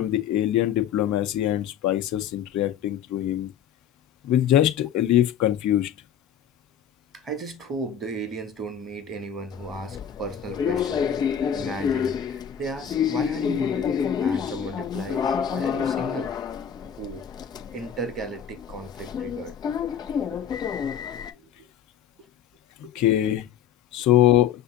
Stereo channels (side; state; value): right; quieter; 8.8 dB